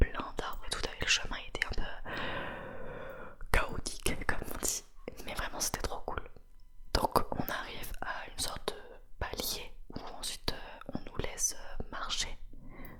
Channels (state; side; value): identical; both; correlation 1.00